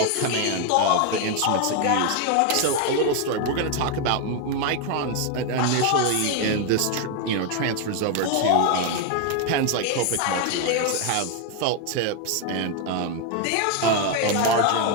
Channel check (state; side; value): different; both; correlation 0.01